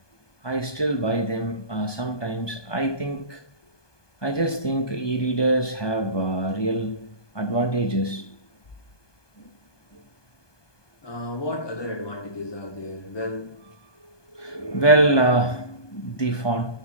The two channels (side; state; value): right; late; 1.2 ms